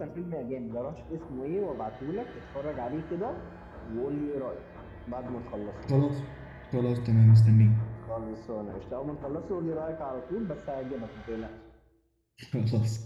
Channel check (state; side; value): identical; both; correlation 1.00